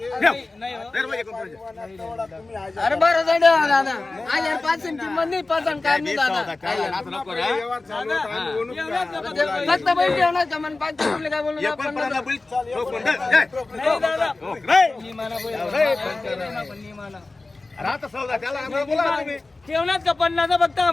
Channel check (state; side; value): quieter; right; 3.3 dB